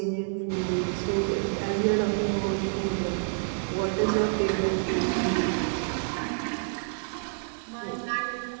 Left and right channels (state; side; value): silent; left; digital silence